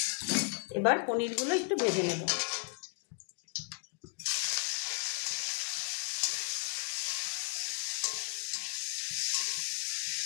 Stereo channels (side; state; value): right; quieter; 34.3 dB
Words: এবার পনিরগুলো একটু ভেজে নেব।